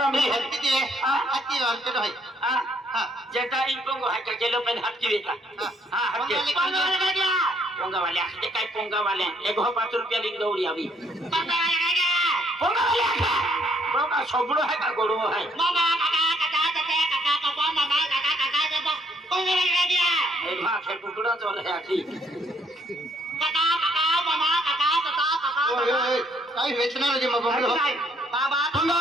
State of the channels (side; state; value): both; normal; correlation 0.67